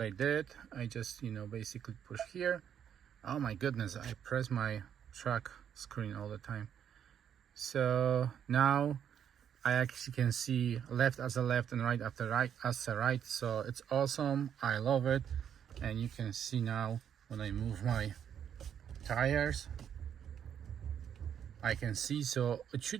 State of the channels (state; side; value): quieter; left; 8.8 dB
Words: I did. I just, basically push here. Oh my goodness, I press my track screen all the time. So now I actually can see left as a left and right after right as a right. So it's awesome. I love it. And you can see now when I move my tires, I can see. So it